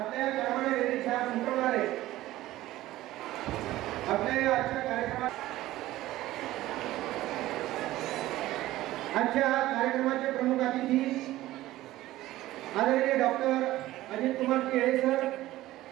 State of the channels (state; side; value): quieter; left; 16.0 dB